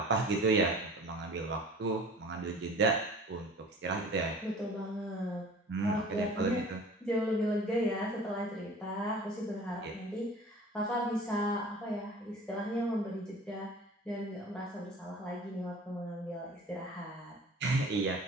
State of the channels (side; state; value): both; normal; correlation 0.44